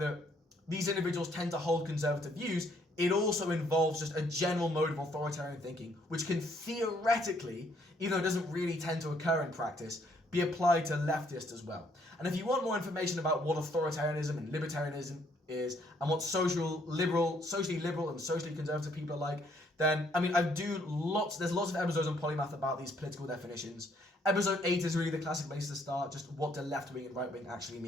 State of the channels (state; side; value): normal; both; correlation 0.67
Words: these individuals tend to hold conservative views, it also involves just a general mode of authoritarian thinking, which can theoretically, even though it doesn't really tend to occur in practice, be applied to leftists as well. And if you want more information about what authoritarianism and libertarianism is, and what socially liberal and socially conservative people are like, then, there's lots of episodes on Polymath about these political definitions. Episode 8 is really the classic place to start, just what do left-wing and right-wing actually